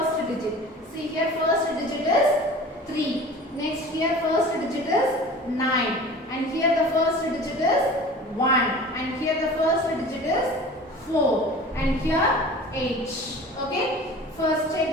digit. See here, first digit is 3. Next here, first digit is 9. And here the first digit is 1. And here the first digit is 4. And here 8. Okay, first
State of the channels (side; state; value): both; normal; correlation 0.40